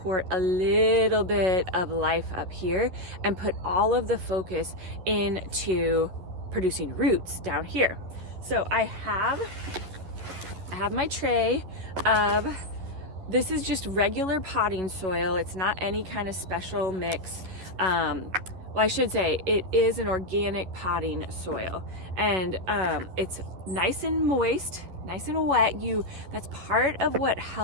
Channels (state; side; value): late; left; 11 ms